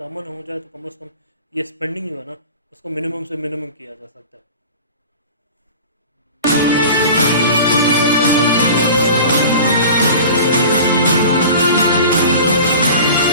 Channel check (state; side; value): inverted; both; correlation -0.38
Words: अमन हो जाए तो कम से कम ये स्पेंडिंग जो है ना उसको मिनिमम से मिनिमम किया जा सकता है।